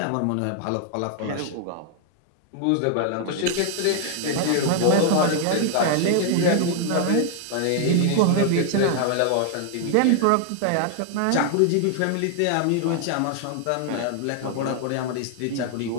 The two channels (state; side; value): different; both; correlation 0.00